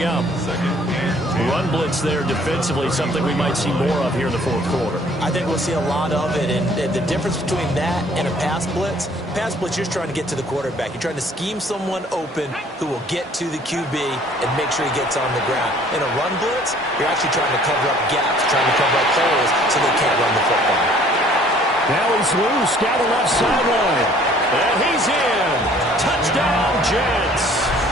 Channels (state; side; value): normal; both; correlation 0.56